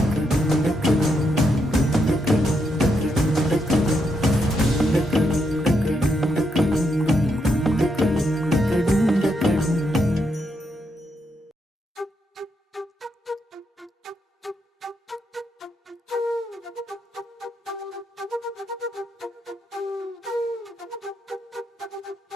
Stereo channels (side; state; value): both; normal; correlation 0.80